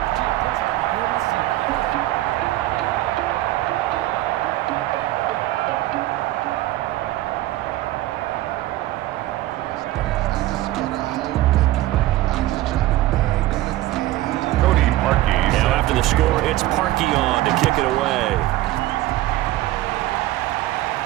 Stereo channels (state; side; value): quieter; left; 16.0 dB